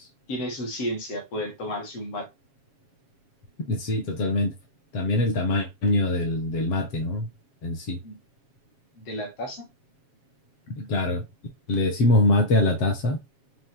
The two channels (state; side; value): late; right; 7.3 ms